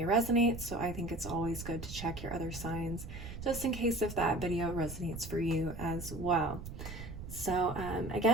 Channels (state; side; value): noise; right; rumble, 10 dB below the sound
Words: resonate, so I think it's always good to check your other signs just in case if that video resonates for you as well. So